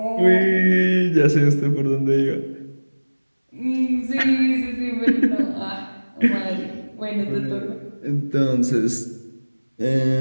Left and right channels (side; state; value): both; inverted; correlation -1.00